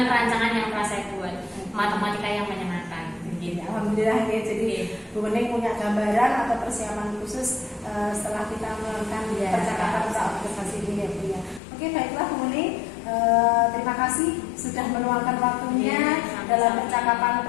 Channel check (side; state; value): right; drops out; at 11.6 s